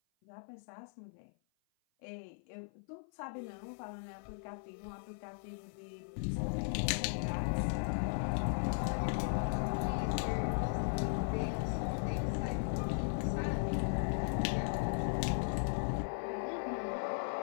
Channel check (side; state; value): right; silent; 53 dB below the other